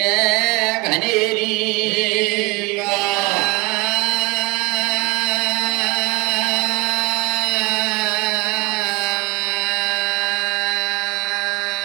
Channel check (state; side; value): quieter; left; 23.3 dB